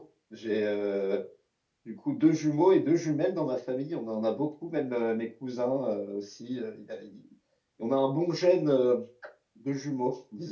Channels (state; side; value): identical; both; correlation 1.00